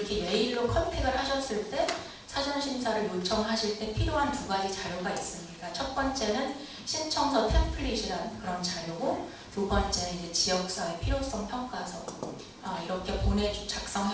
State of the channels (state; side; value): identical; both; correlation 1.00